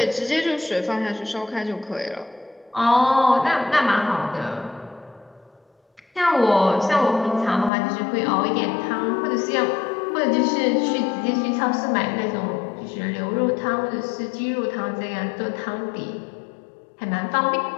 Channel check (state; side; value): drops out; right; at 7.7 s